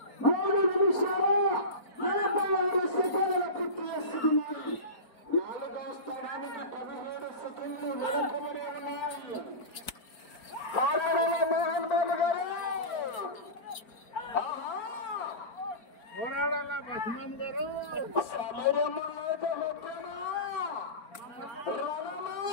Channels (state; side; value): late; right; 4.4 ms